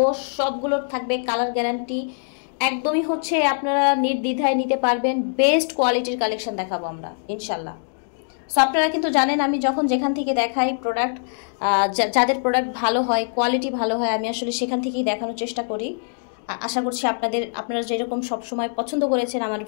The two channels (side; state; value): right; silent; digital silence